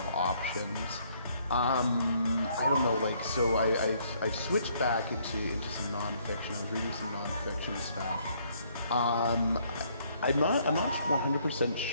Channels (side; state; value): both; inverted; correlation -0.66